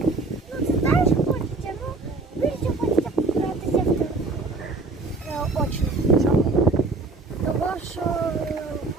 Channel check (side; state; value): left; quieter; 3.7 dB